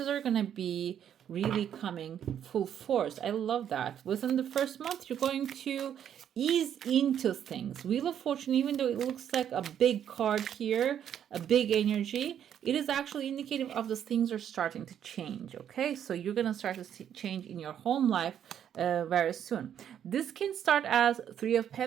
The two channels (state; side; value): quieter; left; 9.5 dB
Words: are going to be really coming full force. I love that. Within the first month, you're going to ease into things. Wheel of Fortune, even though it looks like a big card here, a big energy, it is actually indicative of the things are starting to change. Okay, so you're going to start to see change in your home life very soon. This can start as Three of